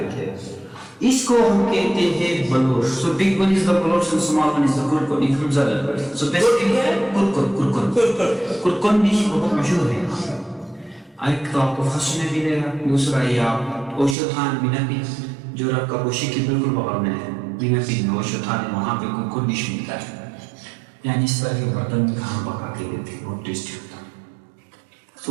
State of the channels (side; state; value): left; drops out; at 14.2 s